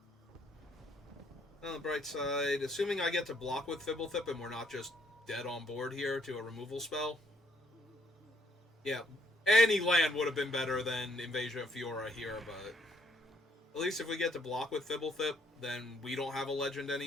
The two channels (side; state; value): both; normal; correlation 0.69